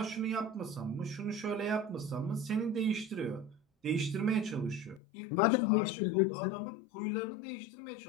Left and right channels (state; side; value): drops out; right; at 5.0 s